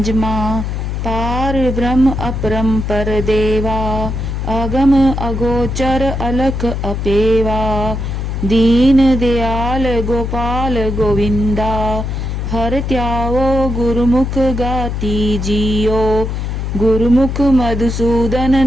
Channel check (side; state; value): left; noise; hum, 3 dB below the sound